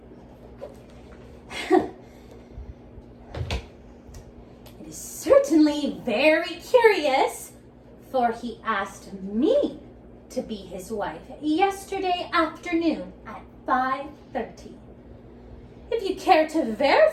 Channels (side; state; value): both; identical; correlation 1.00